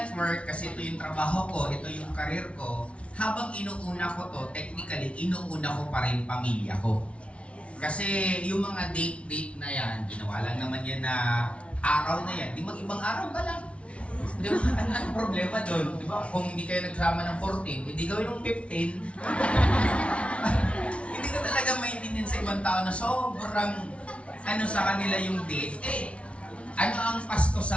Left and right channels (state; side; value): late; right; 0.061 ms